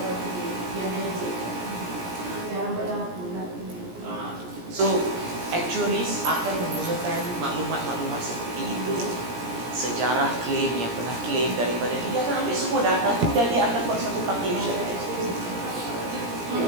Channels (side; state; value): left; late; 17 ms